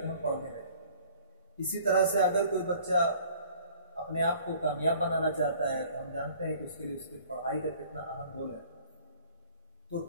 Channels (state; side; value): inverted; both; correlation -0.52